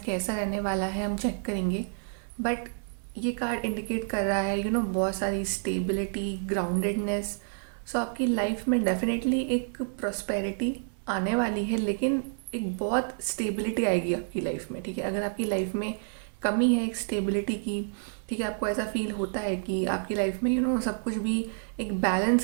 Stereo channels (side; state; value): left; silent; digital silence